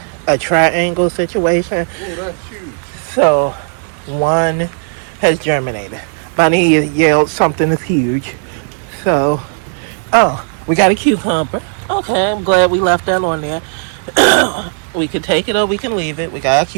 a triangle situation. Oh, that's huge. So one has germinated. Bunny yelled something is huge. So, we got a cucumber. Okay, I'm glad we left that on there. We can take it or we can leave it. We got a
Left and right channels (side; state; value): left; silent; 61 dB below the other